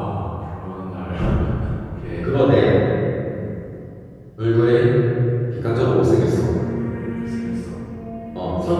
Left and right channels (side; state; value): both; identical; correlation 1.00